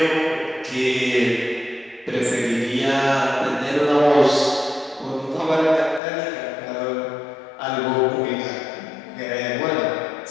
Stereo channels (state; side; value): drops out; right; at 6.0 s